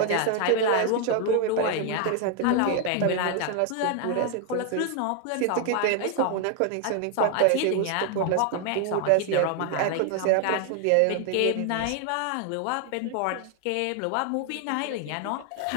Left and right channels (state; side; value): different; both; correlation 0.00